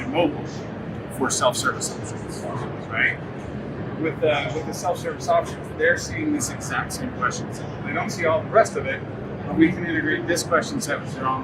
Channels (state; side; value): identical; both; correlation 1.00